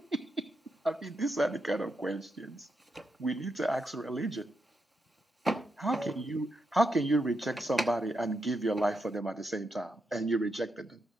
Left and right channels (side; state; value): both; normal; correlation 0.83